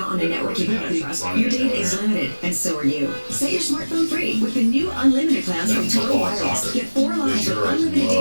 on a network you don't trust, Running your it data down is there. limited, and so are you. Set your smartphone free with the new unlimited plans from Total Football and Wireless. soccer. Get 4 lines of Sure, unlimited love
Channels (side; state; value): both; inverted; correlation -1.00